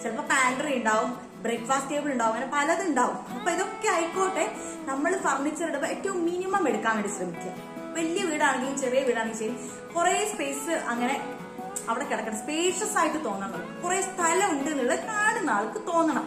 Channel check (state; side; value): identical; both; correlation 1.00